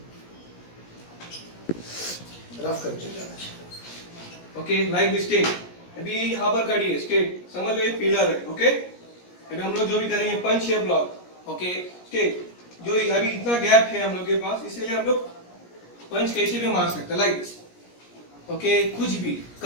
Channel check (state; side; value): late; right; 17 ms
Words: रफ करके जाना चाहिए ओके लाइक दिस स्टेट अभी यहाँ पर खड़ी है स्टेट समझ लो ये पिलर है ओके अभी हम लोग जो भी करेंगे पंच या ब्लॉक ओके स्टेट जो अभी इतना गैप है हम लोग के पास इसीलिए हम लोग पंच कैसे भी मार सकते हैं लाइक दिस ओके कुछ भी